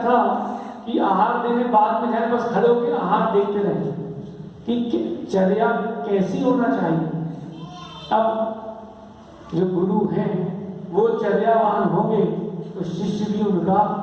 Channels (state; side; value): identical; both; correlation 1.00